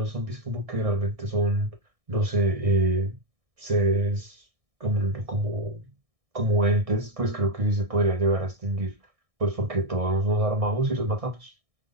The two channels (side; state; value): left; late; 1.6 ms